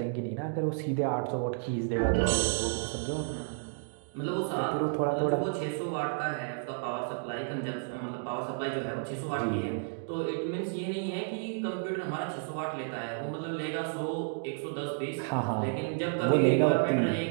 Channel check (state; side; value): silent; left; digital silence